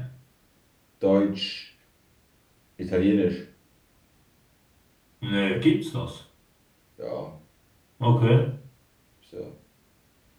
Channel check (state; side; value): identical; both; correlation 1.00